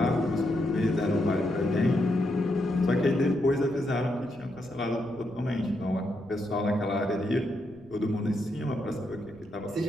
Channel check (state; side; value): noise; right; rumble, 23 dB below the sound